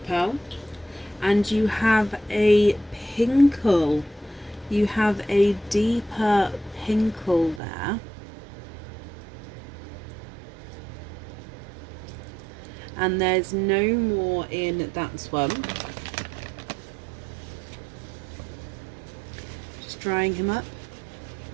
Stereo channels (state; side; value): drops out; left; at 7.6 s